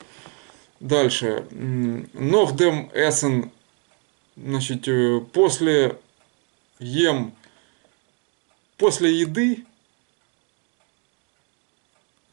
Дальше. Нохдем эссен. Значит, после еды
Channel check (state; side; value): quieter; left; 37.2 dB